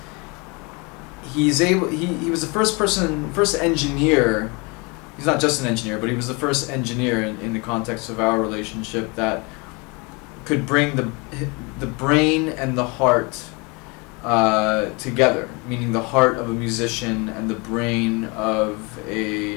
he was the first engineer. He's not just an engineer, but he was the first engineer in the context of our relationship that could bring the brain and the heart together, meaning the heart of a musician and the brain of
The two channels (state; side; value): quieter; right; 29.0 dB